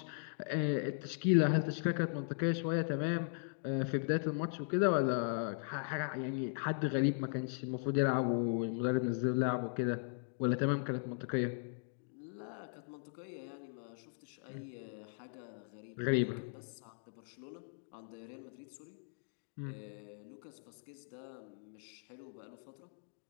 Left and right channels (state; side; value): silent; right; digital silence